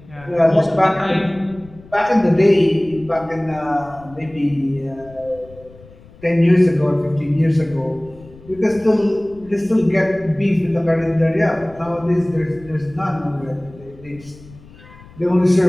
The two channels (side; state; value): left; noise; rumble, 22 dB below the sound